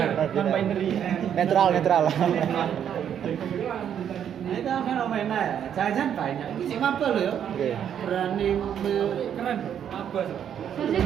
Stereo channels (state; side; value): quieter; left; 9.1 dB